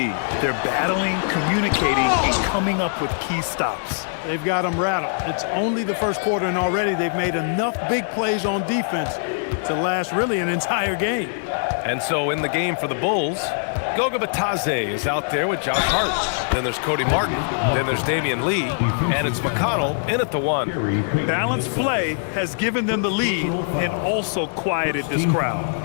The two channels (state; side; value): silent; right; digital silence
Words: They're battling, communicating, and coming up with key stops. They've got them rattled. It's only the first quarter, and already they've made enough big plays on defense to last really an entire game. And so in the game for the Bulls, Goga Bitadze is out there with Josh Hart. Then there's Cody Martin. Then there's Damian Lee. And it's McConnell in at the one. Balanced play has given them the lead and also quieted this crowd.